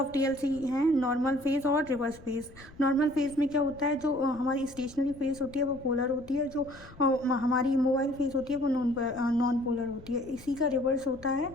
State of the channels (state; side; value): noise; left; rumble, 21 dB below the sound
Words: टीएलसी हैं, नॉर्मल फेज और रिवर्स फेज। नॉर्मल फेज में क्या होता है, जो हमारी स्टेशनरी फेज होती है वो पोलर होती है, जो हमारी मोबाइल फेज होती है वो नॉन पोलर होती है। इसी का रिवर्स होता है